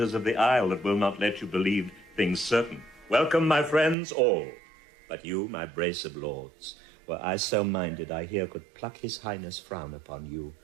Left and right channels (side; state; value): left; drops out; at 4.0 s